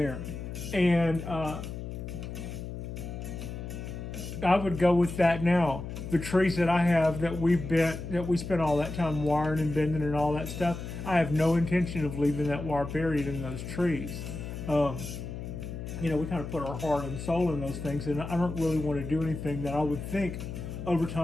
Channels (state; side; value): noise; left; hum, 8 dB below the sound